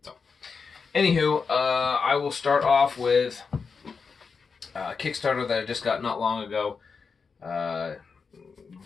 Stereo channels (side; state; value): right; quieter; 5.3 dB